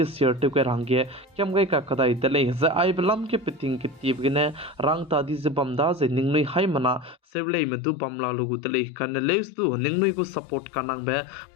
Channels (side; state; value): right; drops out; at 7.2 s